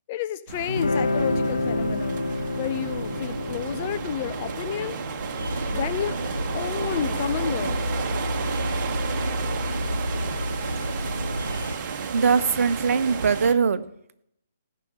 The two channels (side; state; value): both; inverted; correlation -0.71